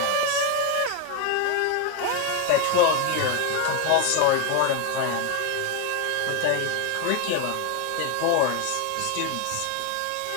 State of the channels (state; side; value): different; both; correlation 0.01